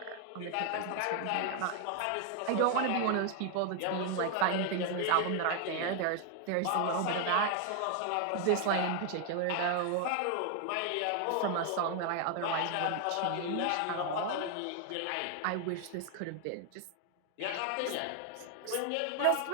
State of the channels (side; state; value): both; different; correlation 0.00